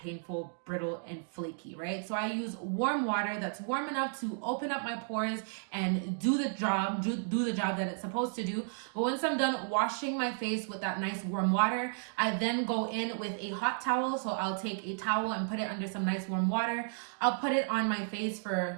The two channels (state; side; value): silent; left; digital silence